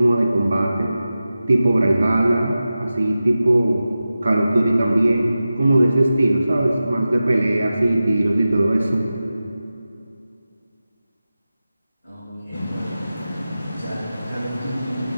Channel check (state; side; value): inverted; both; correlation -0.94